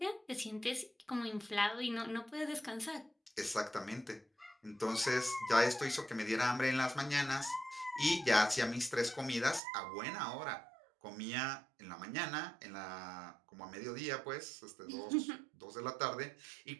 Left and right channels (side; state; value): left; drops out; at 9.6 s